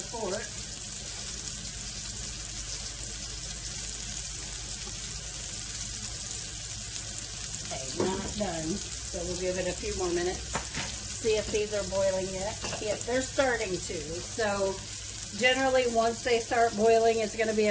fork. Okay, not done. So we'll give it a few more minutes. See if these are boiling yet. Yes, they're starting to. So generally, once they start boiling, it's gonna be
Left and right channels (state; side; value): identical; both; correlation 1.00